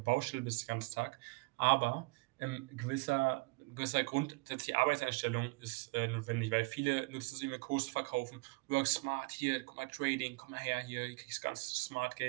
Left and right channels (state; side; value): quieter; left; 28.0 dB